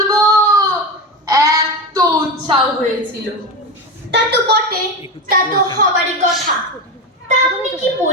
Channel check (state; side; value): normal; both; correlation 0.20